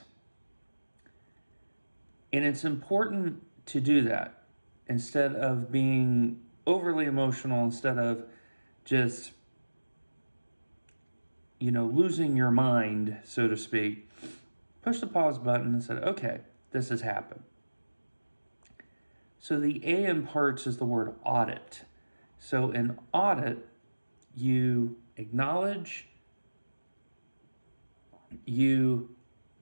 And it's important to do that instead of being overly emotional, instead of just, losing your mind, so to speak. Push the pause button and said, okay, this has happened. So the A in parts is the word audit. So in audit, you acknowledge, you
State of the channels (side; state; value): both; inverted; correlation -1.00